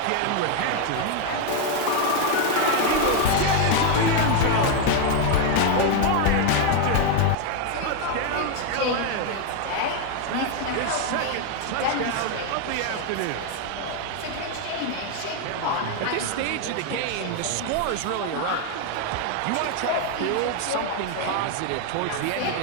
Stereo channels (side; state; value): both; different; correlation 0.01